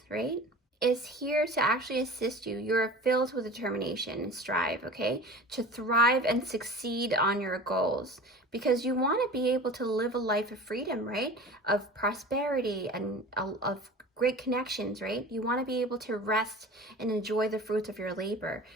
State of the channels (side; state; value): both; normal; correlation 0.38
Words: right, is here to actually assist you. You're filled with determination and strive, okay, to thrive and succeed on your goals, because you want to be able to live a life of freedom, right, of prosperity and of great connections, right? You want to be able to rest and enjoy the fruits of your labor.